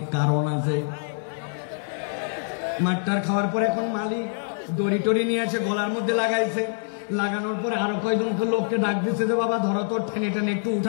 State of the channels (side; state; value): right; silent; digital silence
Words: কারণ আছে। মাঠটার খাওয়ার পরে এখন মালিক দড়ি টড়ি নিয়ে আছে, গলার মধ্যে লাগাইছে। লাগানোর পরে আরো কয়েকজন লোককে ডাক দিচ্ছে যে বাবা ধরো তো, টেনে টেনে একটু